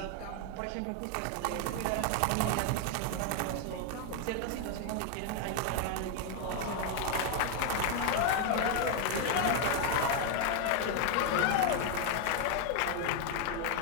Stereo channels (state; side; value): different; both; correlation 0.01